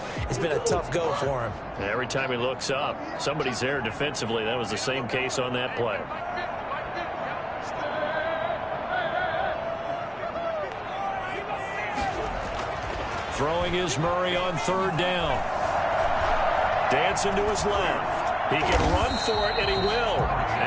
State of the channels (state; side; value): identical; both; correlation 1.00